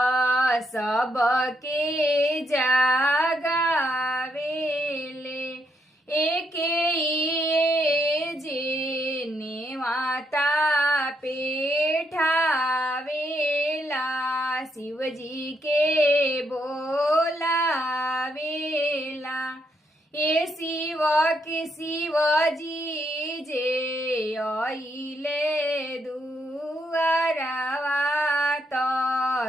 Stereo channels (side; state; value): both; normal; correlation 0.77